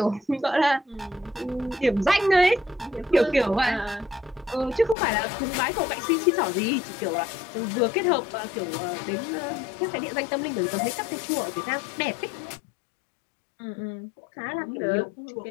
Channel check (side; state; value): right; drops out; at 5.0 s